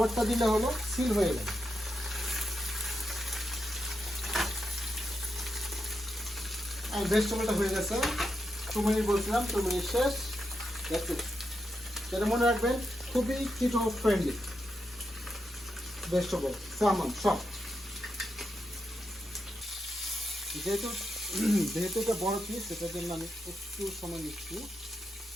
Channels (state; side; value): normal; both; correlation 0.85